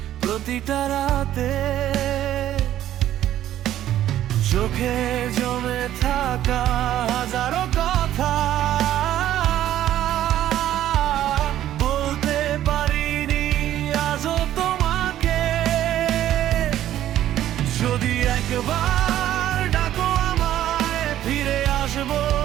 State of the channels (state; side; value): quieter; left; 12.4 dB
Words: প্রতিটা রাতে। চোখে জমে থাকা হাজারো কথা বলতে পারিনি আজও তোমাকে। যদি একবার ডাকো আমায়, ফিরে আসবো